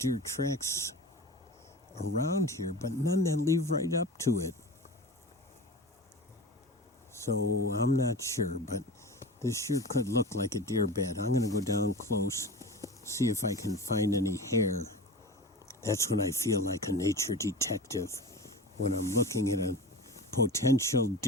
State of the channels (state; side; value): normal; both; correlation 0.32